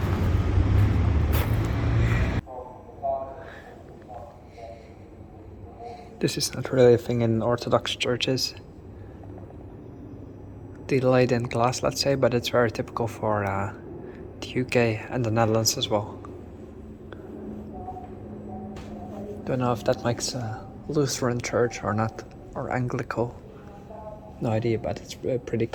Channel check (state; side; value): identical; both; correlation 1.00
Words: This is not really a thing in Orthodox churches. The laid-in glass, let's say, but it's very typical for the UK and the Netherlands as well. Don't know if that makes a Lutheran church or not, or Anglican. No idea, but it's a pretty